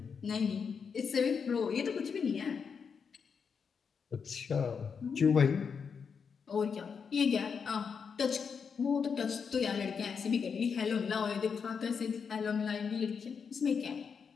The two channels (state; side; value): quieter; right; 6.1 dB